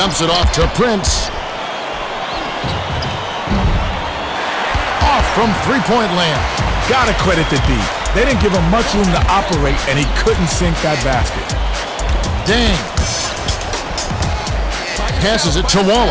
it off to Prince. Off from three-point land. Gotta credit the D. They didn't give him much room to operate, and he couldn't sink that basket. Dang. Passes it to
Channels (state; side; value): identical; both; correlation 1.00